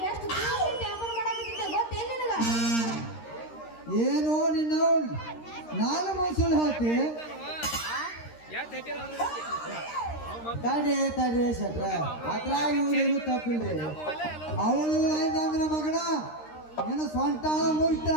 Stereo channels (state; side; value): late; right; 13 ms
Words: ಎಷ್ಟು ದಿವಸ ವ್ಯಾಪಾರ ಮಾಡಾಕತ್ತಿದ್ದೆ ಗೊತ್ತೇನ್ ನಿನಗ? ಏನು ನಿನ್ನ ನಾನು ಮೈಸೂರು ಹಾಕಿ ತಡೆ ಶೆಟ್ರ ಅತ್ರ ಇವ್ರೇನು ತಪ್ಪಿಲ್ರಿ ಅವಳು ಅಂದ್ರೆ ಮಗನ ಏನು ಸ್ವಂತ